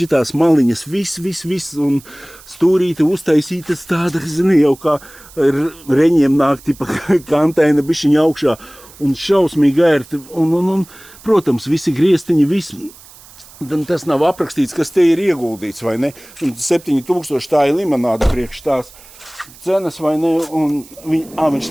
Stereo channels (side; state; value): right; noise; hiss, 22 dB below the sound